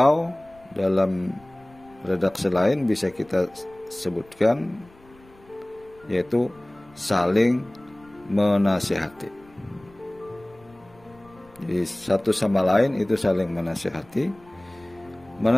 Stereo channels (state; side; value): noise; left; rumble, 27 dB below the sound